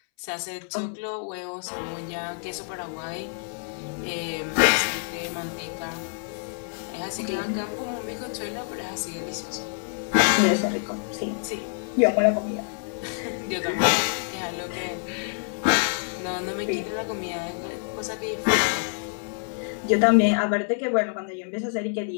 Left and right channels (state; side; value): silent; right; 60 dB below the other